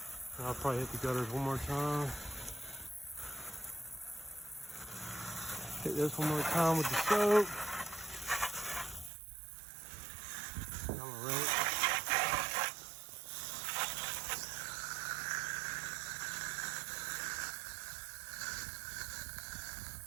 And I'll probably hit the gutters one more time. Hit this one more time with the soap. And I'm gonna rinse.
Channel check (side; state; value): left; drops out; at 9.1 s